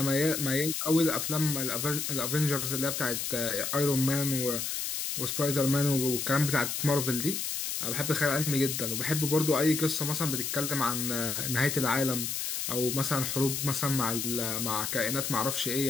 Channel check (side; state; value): left; noise; hiss, 2 dB below the sound